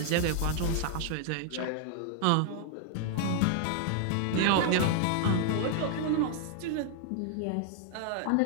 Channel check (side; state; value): both; different; correlation 0.00